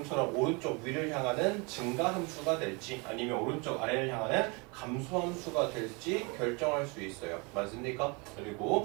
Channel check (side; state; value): left; quieter; 29.7 dB